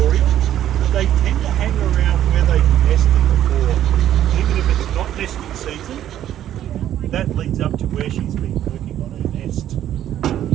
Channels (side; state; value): left; quieter; 11.5 dB